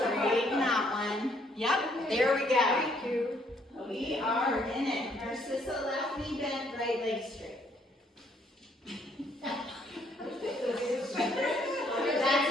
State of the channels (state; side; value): normal; both; correlation 0.67